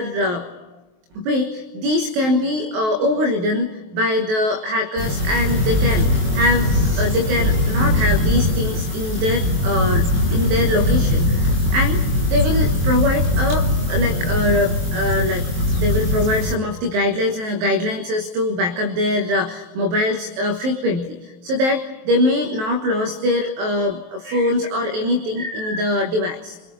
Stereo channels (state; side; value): late; left; 23 ms